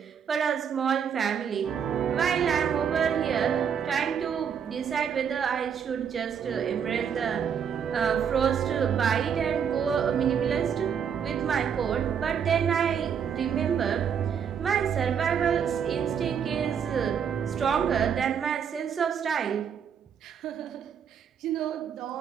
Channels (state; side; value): quieter; left; 7.6 dB